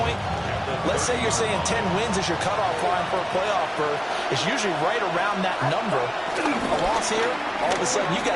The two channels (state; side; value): identical; both; correlation 1.00